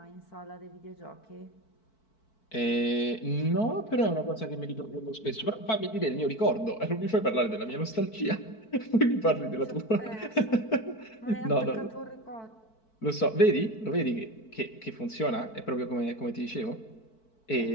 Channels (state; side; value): late; right; 4.5 ms